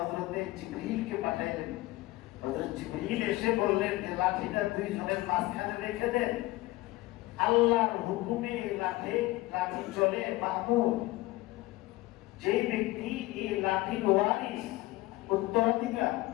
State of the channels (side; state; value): right; quieter; 19.1 dB